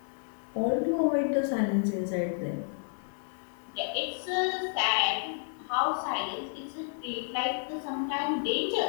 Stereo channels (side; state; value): right; silent; 56 dB below the other